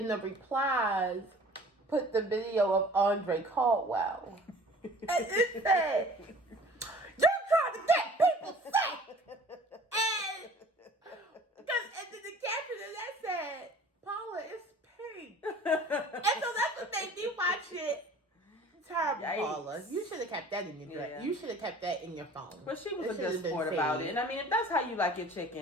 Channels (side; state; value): both; normal; correlation 0.48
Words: the replies put the video of Andre Caldwell. And it said, "You're trying to get people sick." And then the caption of that said, "Paula, it's pink." And so that's what made me watch it. Terrible, Yikes. Paula. You should have kept that in your dress. Yeah. You should have kept that in your phone. But she was It a should good have been sport about saved. it. And I mean, if that's how you like your